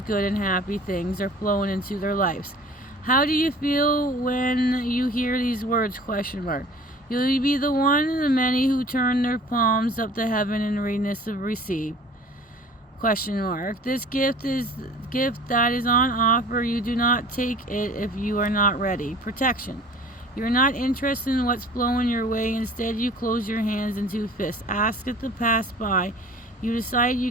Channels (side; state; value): both; normal; correlation 0.46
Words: good and happy things are flowing into their lives. How do you feel when you hear these words? Question mark. You'll be the one of the many who turn their palms up to heaven in readiness of receive. Question mark. This gift that is on offer. You do not take it if you are not ready. Protection. You're not interested in what's flowing your way. Instead, you close your hands into fists. Ask it to pass by. You decide